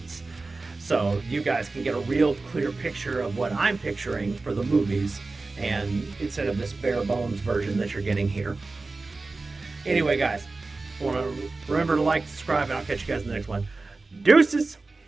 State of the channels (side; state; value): left; quieter; 3.6 dB